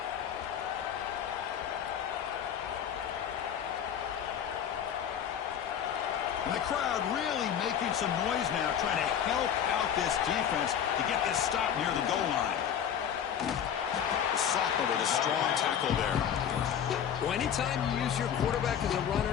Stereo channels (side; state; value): right; quieter; 8.9 dB